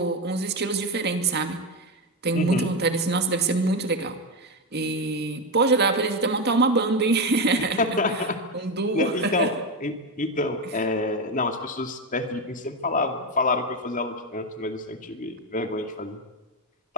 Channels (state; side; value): normal; both; correlation 0.11